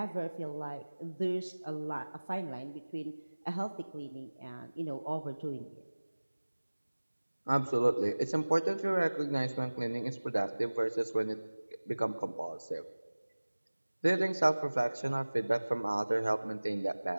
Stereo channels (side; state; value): both; inverted; correlation -1.00